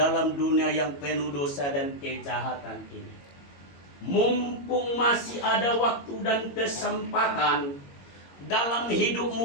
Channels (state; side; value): late; right; 22 ms